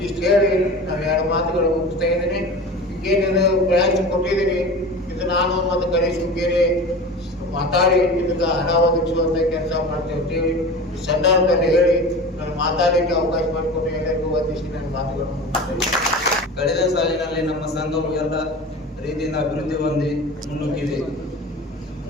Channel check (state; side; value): normal; both; correlation 0.34